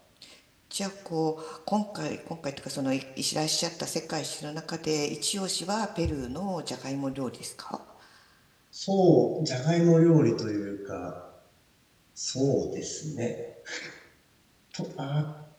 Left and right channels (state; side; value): identical; both; correlation 1.00